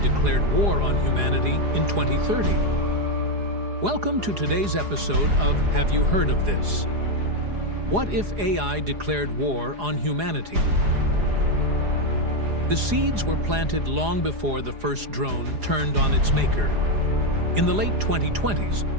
war on humanity in 2030. Welcome to today's episode of Have You Heard of This? What if AI declared war on humanity? The seeds were planted long before the first drone turned on its maker. In the late 2020s,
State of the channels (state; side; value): late; left; 4.9 ms